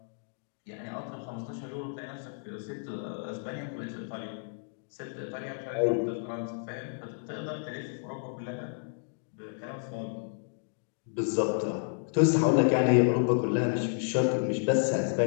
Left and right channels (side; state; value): right; silent; digital silence